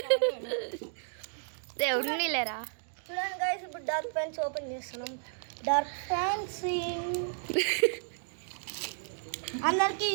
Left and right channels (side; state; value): left; silent; digital silence